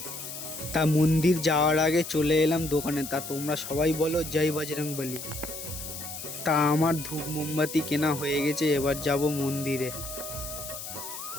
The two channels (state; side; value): noise; left; hiss, 9 dB below the sound